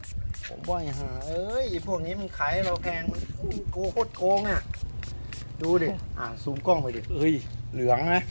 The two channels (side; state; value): both; inverted; correlation -1.00